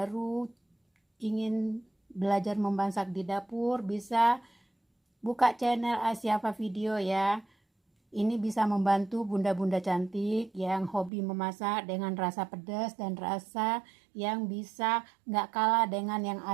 ingin belajar memasak di dapur, bisa buka channel Asyafa Video ya. Ini bisa membantu bunda-bunda cantik yang hobi memasak dengan rasa pedas dan rasa yang bisa nggak kalah dengan yang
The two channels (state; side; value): drops out; left; at 11.1 s